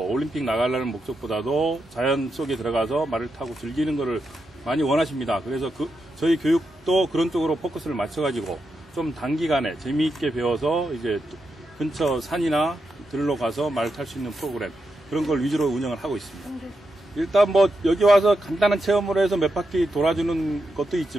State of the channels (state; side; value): normal; both; correlation 0.86